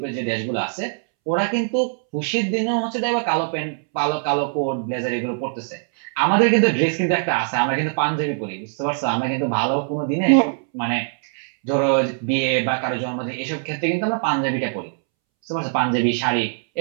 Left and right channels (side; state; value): left; silent; 64 dB below the other